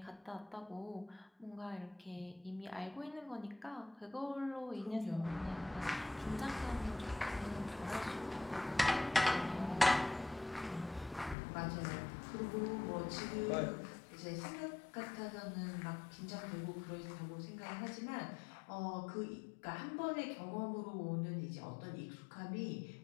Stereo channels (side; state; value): right; drops out; at 11.4 s